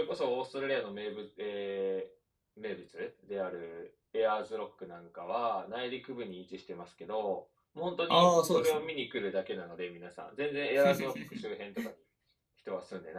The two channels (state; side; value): identical; both; correlation 1.00